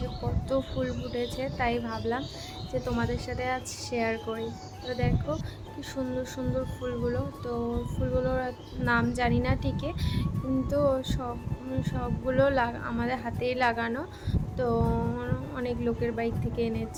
কত ফুল ফুটেছে, তাই ভাবলাম যে তোমাদের সাথে আজ শেয়ার করি। তো দেখো কি সুন্দর সুন্দর ফুলগুলো। তো ফুলগুলোর নাম জানি না ঠিকই, কিন্তু সবগুলো আমাদের হাতেই লাগানো। তো অনেক লোকের বাড়ি থেকে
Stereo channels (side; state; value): both; identical; correlation 1.00